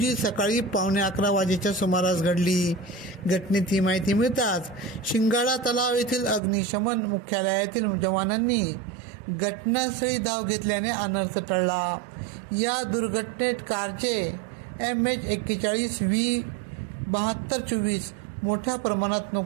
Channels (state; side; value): drops out; left; at 6.4 s